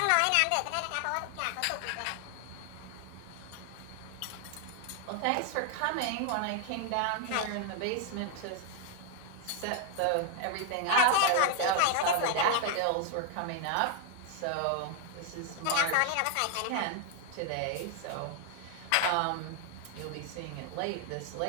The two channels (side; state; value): both; different; correlation 0.00